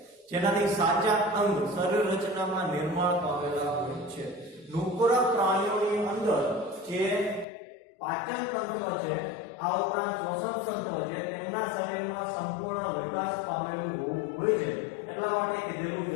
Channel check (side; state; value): right; drops out; at 7.5 s